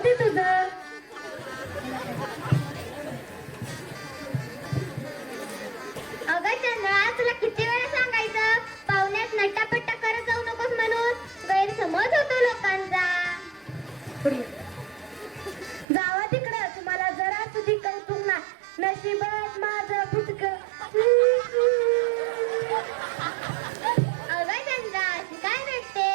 तुझं. अगं चंद्रा, तुला किती वेळा सांगायचं पाहुण्यात नट्टापट्टा करत जाऊ नकोस म्हणून? गैरसमज होतो लोकांचा. जावा तिकडं, तुम्हाला जरा तुझी कौतुक ना. नशिबात माझं फुटक. अगं चंद्रा, अशी काय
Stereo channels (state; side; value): drops out; left; at 15.9 s